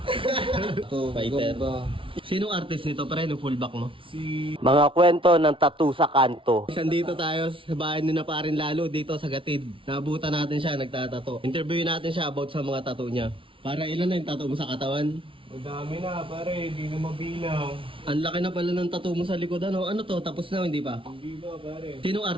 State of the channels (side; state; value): left; late; 0.25 ms